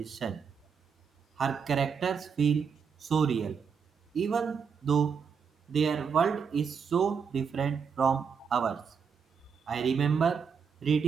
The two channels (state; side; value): quieter; left; 6.3 dB